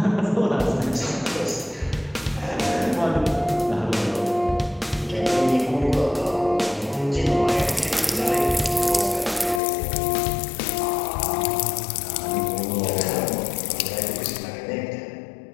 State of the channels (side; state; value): right; drops out; at 9.6 s